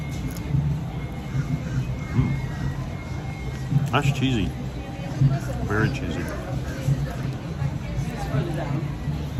That's cheesy. Very cheesy.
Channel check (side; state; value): both; identical; correlation 1.00